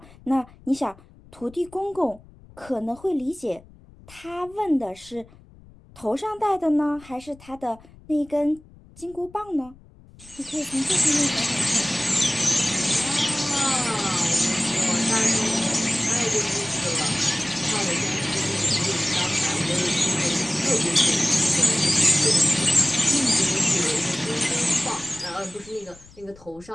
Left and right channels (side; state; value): left; noise; rumble, 24 dB below the sound